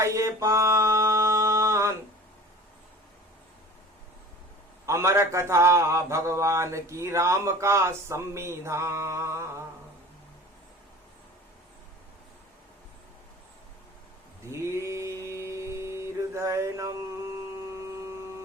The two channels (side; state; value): both; normal; correlation 0.42